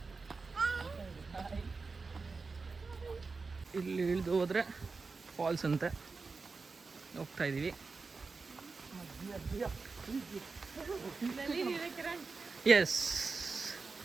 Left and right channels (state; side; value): quieter; left; 4.3 dB